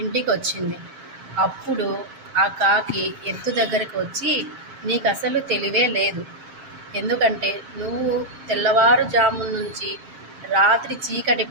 ఇంటికి వచ్చింది. అప్పుడు ఆ కాకి ఎద్దు దగ్గరికి వచ్చి, నీకు అసలు తెలివే లేదు. ఎందుకంటే నువ్వు తెల్లవారుజాము నుంచి రాత్రి చీకటి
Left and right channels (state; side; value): late; left; 7.5 ms